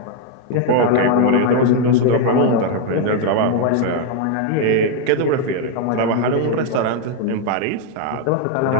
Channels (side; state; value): both; different; correlation 0.01